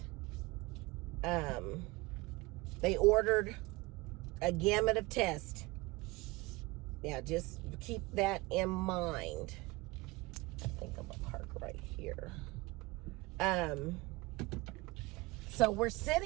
they ordered a gamut of tests. Yeah, just keep that in mind. I think I'm going to park right here. So we're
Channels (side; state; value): left; quieter; 22.7 dB